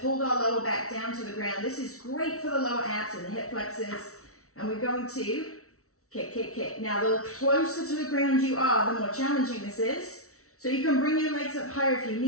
pulled our lower back down to the ground. This is great for the lower abs and the hip flexors. And we're going to kick, kick, kick. Now, the closer to the ground you are, the more challenging this is. So you can bring your legs up higher if you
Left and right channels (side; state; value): right; late; 0.64 ms